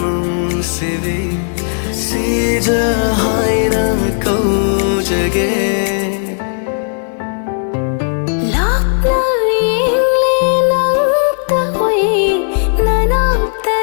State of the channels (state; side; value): silent; right; digital silence